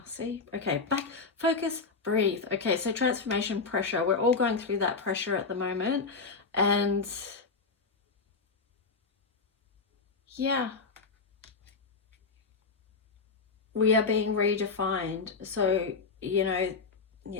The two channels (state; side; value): quieter; right; 4.5 dB